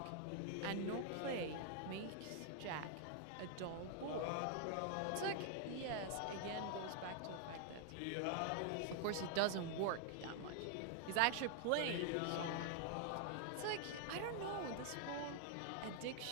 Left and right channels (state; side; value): different; both; correlation 0.00